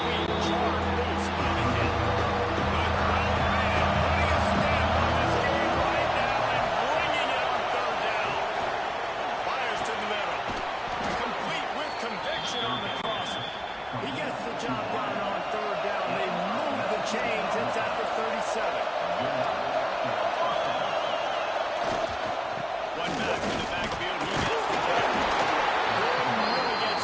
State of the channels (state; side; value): identical; both; correlation 1.00